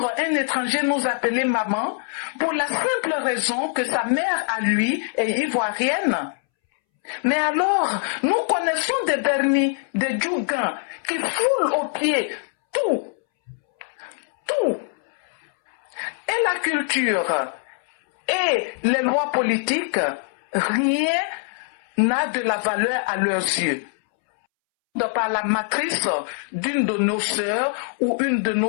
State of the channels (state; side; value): silent; right; 63 dB below the other